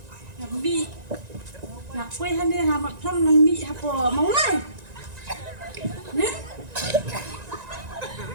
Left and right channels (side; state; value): left; late; 1.9 ms